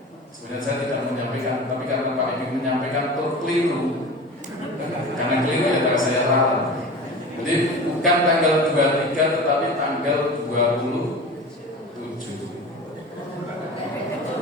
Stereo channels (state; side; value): normal; both; correlation 0.34